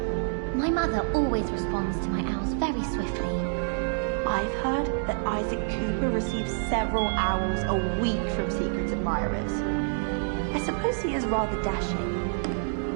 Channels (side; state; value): left; silent; digital silence